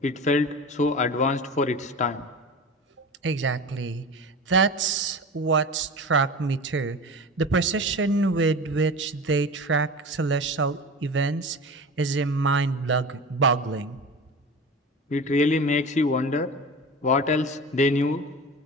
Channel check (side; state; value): both; normal; correlation 0.32